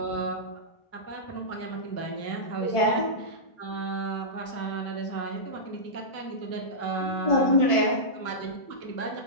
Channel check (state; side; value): late; right; 1.5 ms